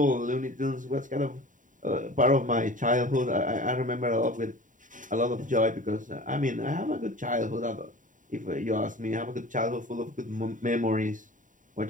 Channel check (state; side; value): late; left; 0.38 ms